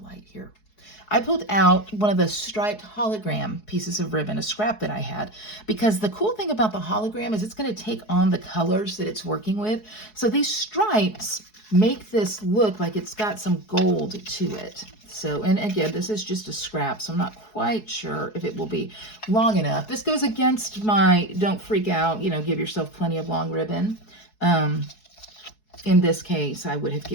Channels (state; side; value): late; right; 4.7 ms